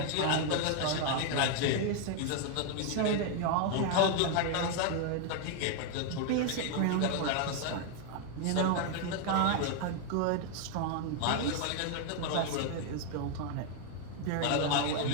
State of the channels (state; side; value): different; both; correlation 0.00